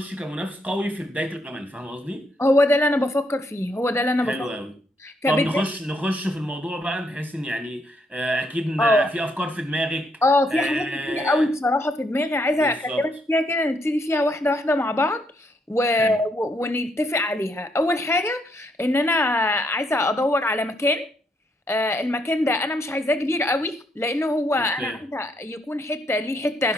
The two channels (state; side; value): normal; both; correlation 0.75